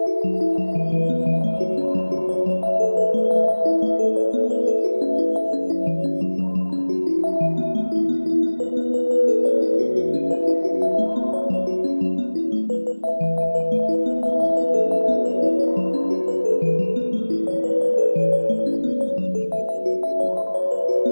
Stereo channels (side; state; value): both; inverted; correlation -1.00